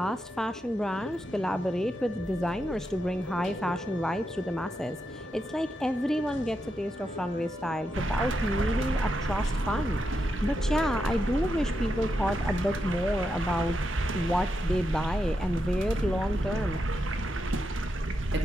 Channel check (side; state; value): both; normal; correlation 0.85